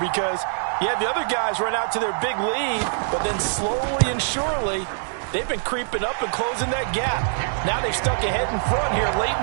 yeah, the other guys run out to their big lead, but then slowly and surely, they've been creeping up and closing that gap. Now they've stuck ahead in front here late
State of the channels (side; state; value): left; silent; digital silence